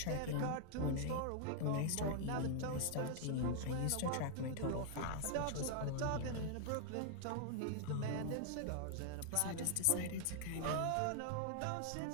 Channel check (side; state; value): both; different; correlation 0.00